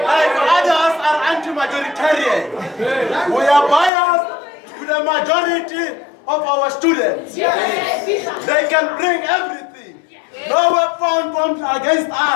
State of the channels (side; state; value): right; drops out; at 3.9 s